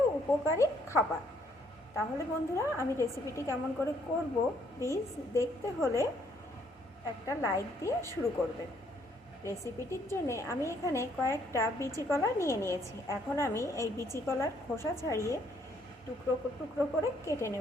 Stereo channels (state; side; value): normal; both; correlation 0.68